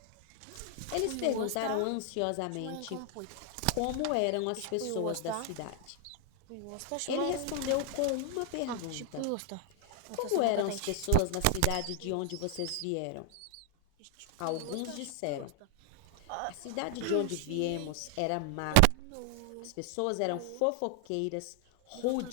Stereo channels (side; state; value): both; different; correlation 0.00